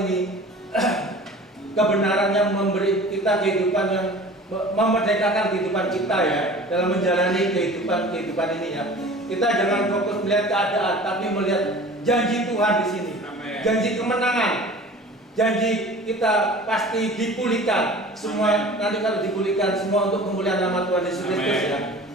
ini kebenaran yang memberi kita kehidupan yang memerdekakan kehidupan kita ya, dalam menjalani kehidupan ini ya. Kita jangan fokus melihat keadaan, tapi melihat janji Tuhan di sini. Amen. Janji kemenangan, janji kita pasti dipulihkan semua. Nanti kalau dipulihkan semua untuk kemuliaan nama Tuhan Yesus Kristus ya.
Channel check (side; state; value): both; normal; correlation 0.42